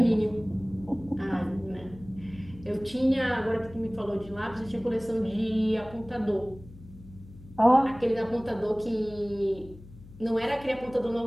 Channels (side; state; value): left; noise; hum, 19 dB below the sound